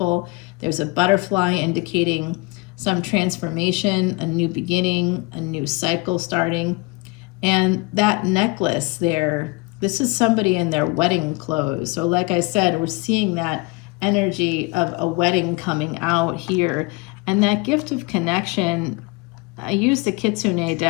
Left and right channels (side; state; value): right; quieter; 25.5 dB